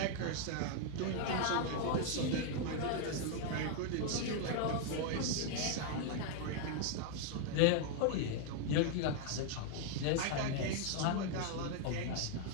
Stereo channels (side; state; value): both; different; correlation 0.00